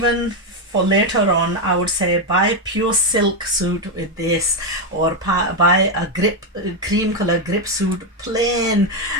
for later on, I would say buy pure silk suit with this, or buy a cream color grip suit, plain,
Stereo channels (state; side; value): normal; both; correlation 0.06